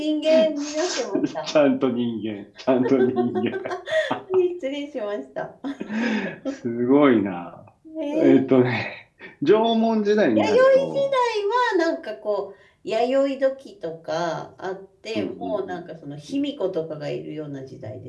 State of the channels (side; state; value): both; identical; correlation 1.00